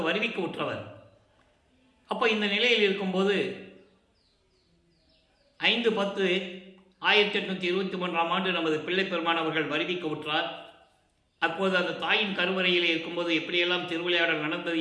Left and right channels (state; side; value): identical; both; correlation 1.00